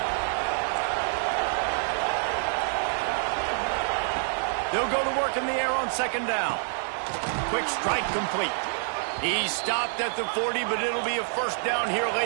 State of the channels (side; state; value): left; silent; 60 dB below the other